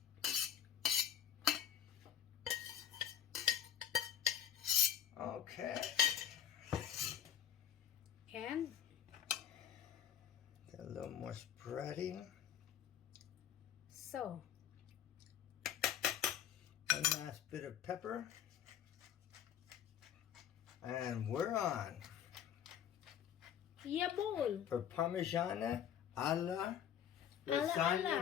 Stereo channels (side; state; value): right; quieter; 9.6 dB